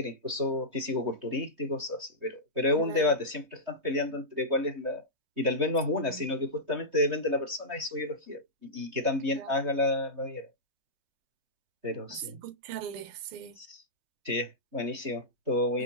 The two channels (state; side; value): late; left; 3.2 ms